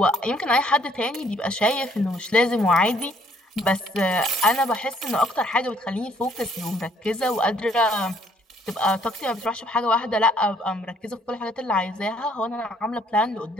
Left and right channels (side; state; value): both; normal; correlation 0.64